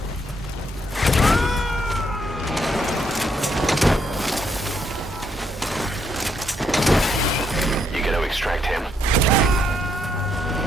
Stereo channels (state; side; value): normal; both; correlation 0.75